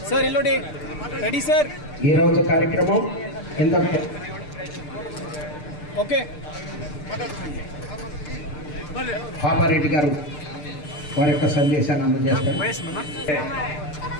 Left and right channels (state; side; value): late; right; 6.7 ms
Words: సార్ ఇల్లుడి రెడీ సార్. ఈ రోజు కార్యక్రమం ఇంతకు ఓకే. పాపారెడ్డి గారు వారి యొక్క సందేశాన్ని అందజేస్తారు.